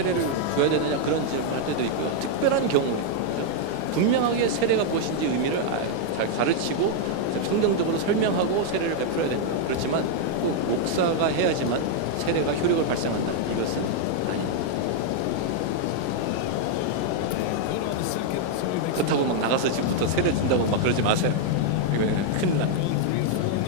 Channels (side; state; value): both; different; correlation 0.00